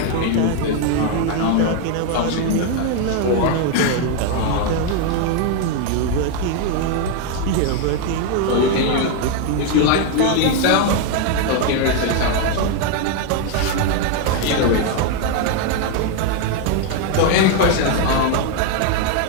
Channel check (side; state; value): both; different; correlation 0.01